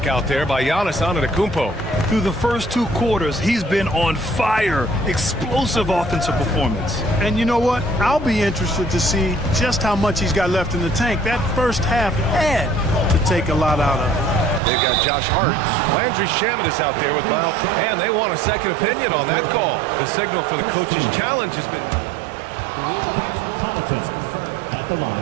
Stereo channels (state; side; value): drops out; left; at 14.6 s